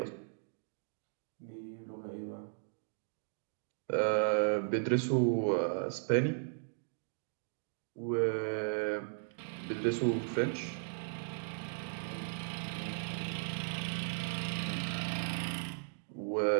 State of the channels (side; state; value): left; silent; digital silence